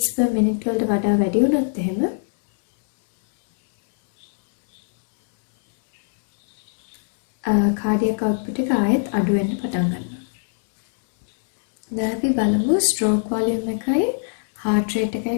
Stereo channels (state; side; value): silent; right; digital silence